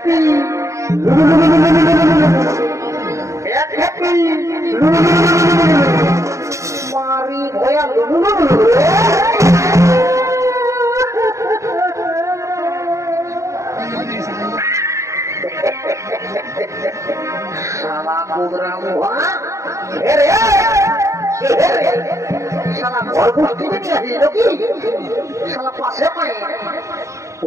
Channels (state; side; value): late; left; 0.15 ms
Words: মারি ভয়া শালা প্রোগ্রাম শালা ঘর গোষ্ঠী নিয়ে আসিল কি শালা পাশে পায়